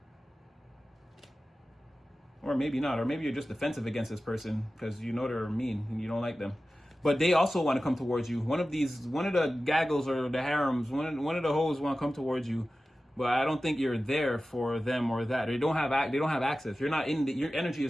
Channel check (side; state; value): both; normal; correlation 0.95